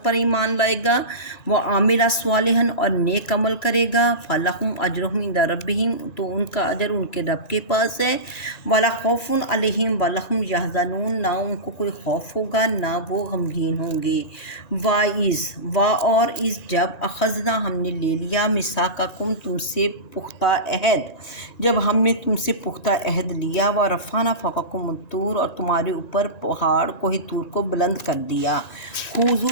پر ایمان لائے گا، وہ عامل صالحا، اور نیک عمل کرے گا، فلہم اجرہم عند ربہم، تو ان کا اجر ان کے رب کے پاس ہے، ولا خوف علیہم ولا هم يحزنون، نہ ان کو کوئی خوف ہوگا نہ وہ غمگین ہوں گے۔ اور اس جب اخذنا، ہم نے لے لیا، میثاقکم، تم سے پختہ عہد، جب ہم نے تم سے پختہ عہد لیا، ورفعنا فوقکم الطور، اور تمہارے اوپر پہاڑ کوہ طور کو بلند کر دیا،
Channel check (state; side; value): late; right; 1.9 ms